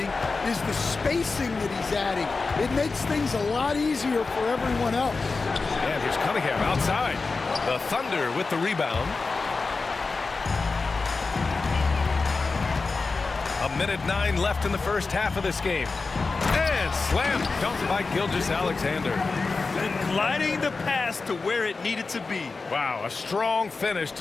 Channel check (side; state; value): right; quieter; 4.1 dB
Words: is the spacing that he's adding. It makes things a lot easier for everyone else. And here's Cunningham outside. The Thunder with the rebound. 1:09 left in the first half of this game. And slam dunked by Gilgeous-Alexander. And gliding the pass to where it needed to be. Wow, a strong finish